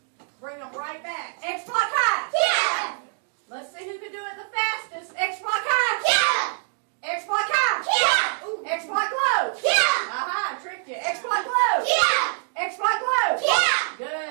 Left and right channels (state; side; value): silent; left; digital silence